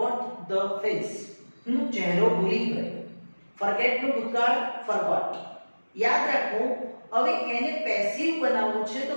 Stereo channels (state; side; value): inverted; both; correlation -1.00